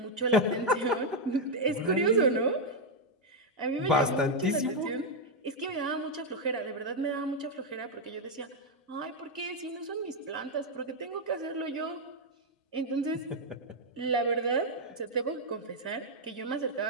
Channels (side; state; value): both; normal; correlation 0.01